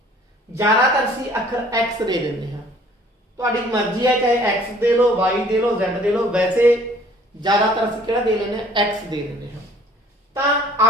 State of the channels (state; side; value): normal; both; correlation 0.55